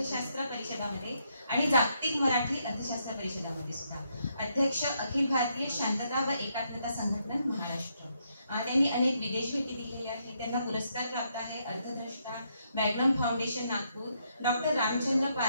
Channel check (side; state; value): both; inverted; correlation -0.76